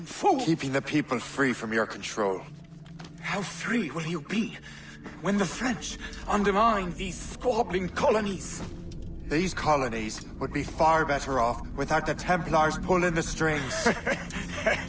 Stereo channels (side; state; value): both; identical; correlation 1.00